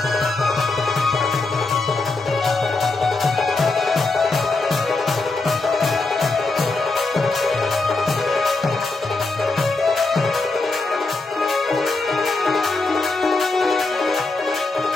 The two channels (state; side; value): quieter; right; 3.5 dB